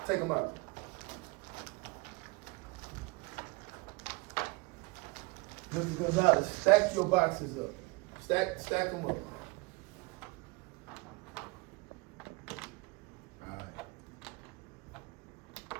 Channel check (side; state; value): left; quieter; 25.3 dB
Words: Take them out. Mr. Gonzalez, stack your boxes up. Stack them up. All right.